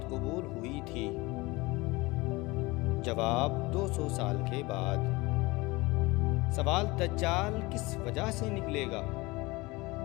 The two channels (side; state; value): right; quieter; 22.7 dB